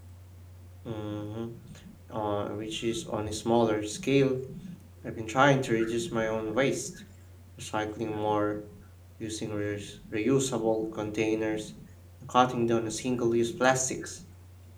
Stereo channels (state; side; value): identical; both; correlation 1.00